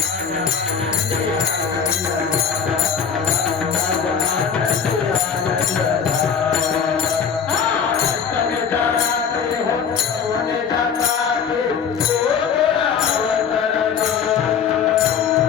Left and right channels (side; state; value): right; quieter; 6.9 dB